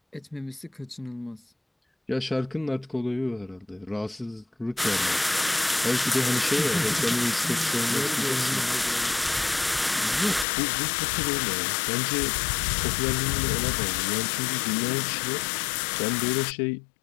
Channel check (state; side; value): drops out; right; at 10.5 s